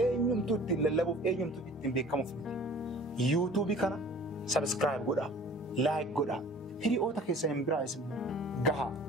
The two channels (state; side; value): normal; both; correlation 0.47